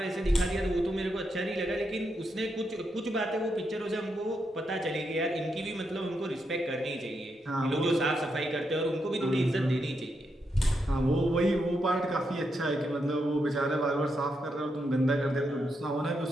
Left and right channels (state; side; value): normal; both; correlation 0.82